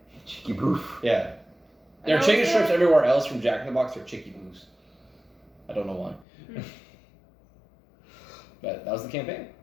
Cheeky boof. Yeah. There are And chicken also- strips everywhere else from Jack in the Box. They're chicky booths. I don't know why. But that was the campaign.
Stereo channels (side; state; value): right; drops out; at 6.2 s